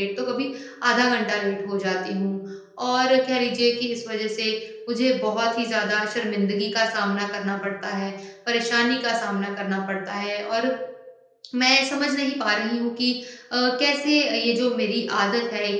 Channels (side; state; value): both; identical; correlation 1.00